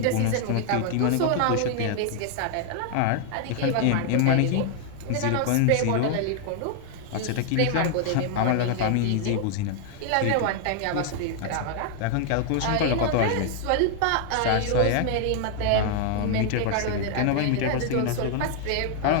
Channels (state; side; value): different; both; correlation 0.00